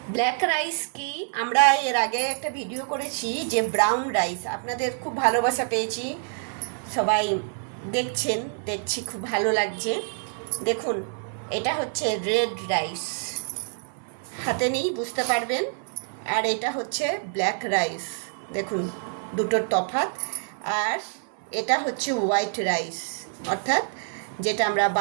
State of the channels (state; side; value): silent; left; digital silence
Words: ব্ল্যাক রাইস কি, আমরা এর আগে একটা ভিডিও করেছি যে ব্রাউন রাইস, আপনাদের খুব ভালোবাসা পেয়েছি, সবাই দেখছি খুব ভালো লাগছে। দেখুন এটা হচ্ছে রেড রাইস, হাতে নেই বুঝতে পারবেন, আর এটা হচ্ছে ব্ল্যাক রাইস। দেখুন দুটোর তফাৎ। আর এটা হচ্ছে হোয়াইট রাইস, অর্থাৎ যেটা আমরা